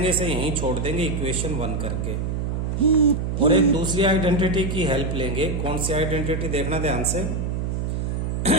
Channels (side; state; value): right; noise; hum, 1 dB below the sound